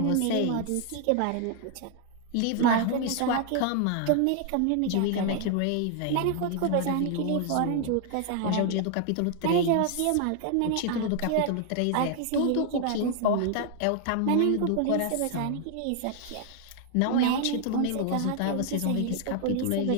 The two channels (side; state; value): both; different; correlation 0.00